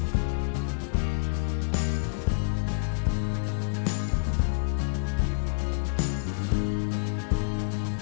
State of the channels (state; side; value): silent; right; 59 dB below the other